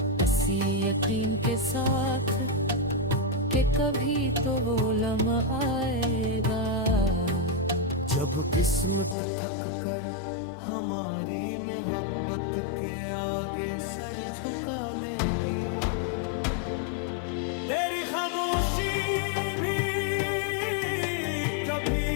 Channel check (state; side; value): drops out; right; at 9.2 s